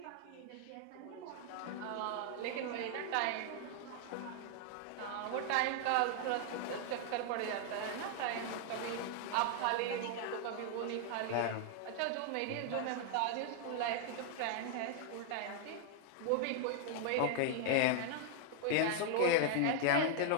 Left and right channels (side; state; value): both; different; correlation 0.00